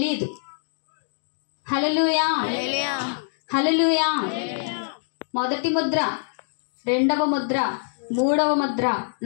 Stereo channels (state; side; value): silent; right; digital silence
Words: హల్లెలూయా, హల్లెలూయా. మొదటి ముద్ర, రెండవ ముద్ర, మూడవ ముద్ర,